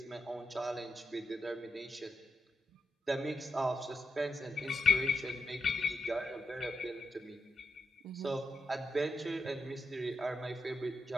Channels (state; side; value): normal; both; correlation 0.86